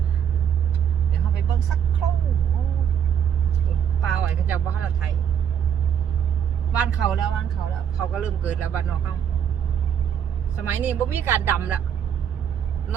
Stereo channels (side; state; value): left; quieter; 8.5 dB